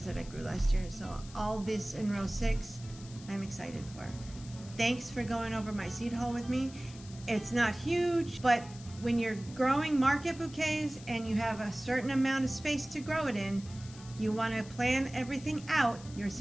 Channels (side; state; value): left; noise; hiss, 19 dB below the sound